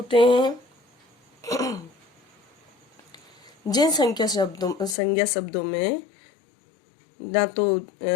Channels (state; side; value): drops out; right; at 5.0 s